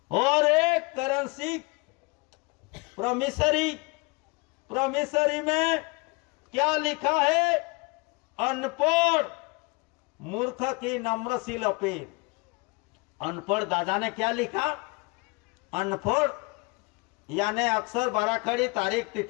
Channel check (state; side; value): quieter; right; 28.0 dB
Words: और एक करेंसी प्रोमिसरी, प्रोमिसरी में क्या लिखा है? अनपढ़ मूर्ख की नम्रशील अपील। अनपढ़ दादा ने क्या लिखा? अनपढ़ यानी अक्षर बाराखड़ी तारीख